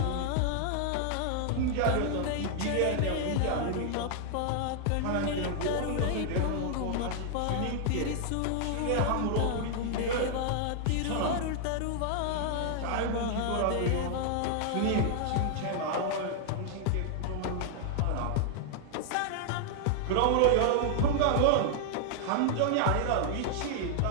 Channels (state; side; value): different; both; correlation 0.00